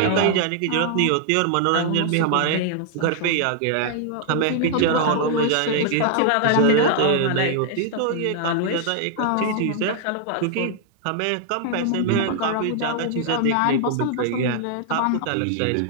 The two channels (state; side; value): different; both; correlation 0.00